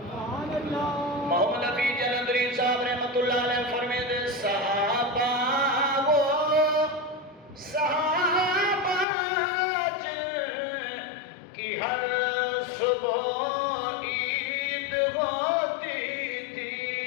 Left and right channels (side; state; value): right; drops out; at 9.1 s